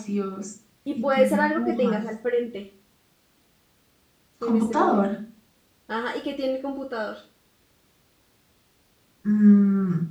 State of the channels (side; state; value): both; identical; correlation 1.00